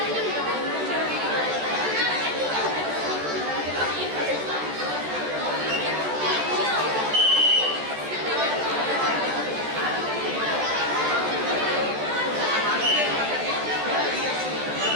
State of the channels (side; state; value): left; late; 14 ms